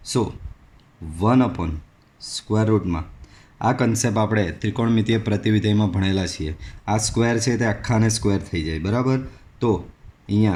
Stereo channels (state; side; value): identical; both; correlation 1.00